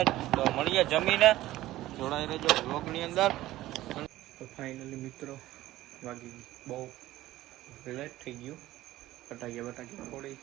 તો મળીએ જમીને. જોડાઈ રહેજો વ્લોગ ની અંદર. તો ફાઇનલી મિત્રો વાગી બહુ લેટ થઈ ગયું. ફટાકિયા ફોડી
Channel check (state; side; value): quieter; left; 15.8 dB